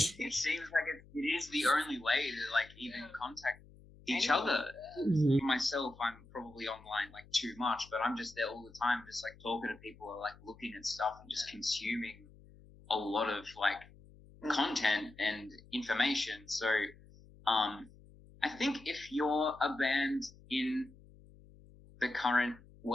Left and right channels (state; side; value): noise; left; hum, 23 dB below the sound